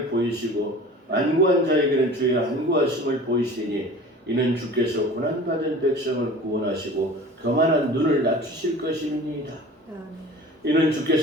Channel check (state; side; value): normal; both; correlation 0.41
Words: 보이시고 안구한 자에게는 주의 안구하심을 보이시니 이는 주께서 고난받은 백성을 구원하시고 교만한 눈을 낮추실 것입니다. 이는